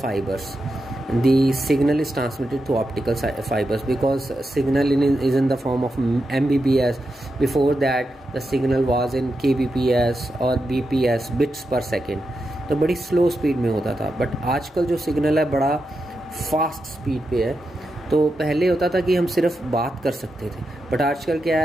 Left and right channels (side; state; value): both; normal; correlation 0.87